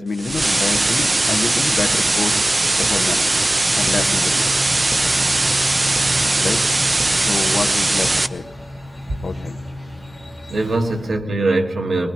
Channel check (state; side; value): normal; both; correlation 0.96